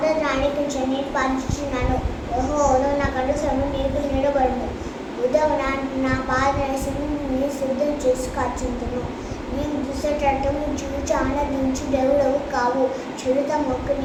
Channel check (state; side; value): identical; both; correlation 1.00